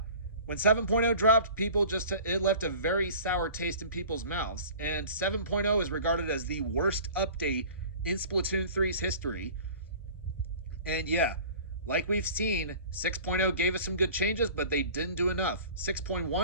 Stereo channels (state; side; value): inverted; both; correlation -0.43